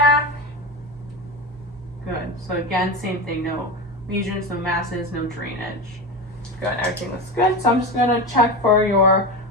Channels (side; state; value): both; normal; correlation 0.22